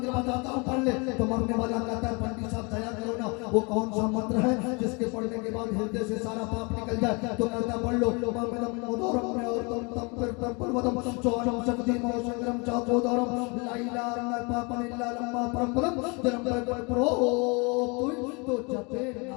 बताता हूँ, पढ़ ले। तो मरने वाला कहता है पंडित साहब दया करो ना, वो कौन सा मंत्र है जिसके पढ़ने के बाद हृदय से सारा पाप निकल जाए? तो कहता है पढ़ लो, तो जपे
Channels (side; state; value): right; quieter; 30.7 dB